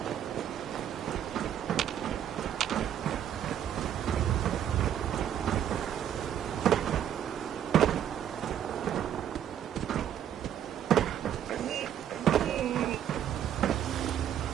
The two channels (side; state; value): left; quieter; 10.0 dB